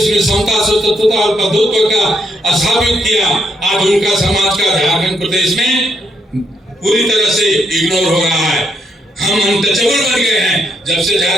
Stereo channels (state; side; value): normal; both; correlation 0.76